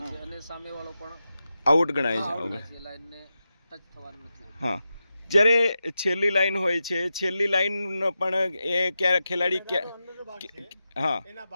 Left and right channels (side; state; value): both; inverted; correlation -0.90